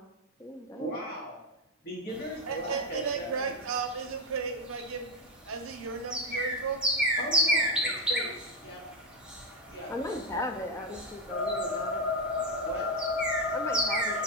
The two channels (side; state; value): both; normal; correlation 0.10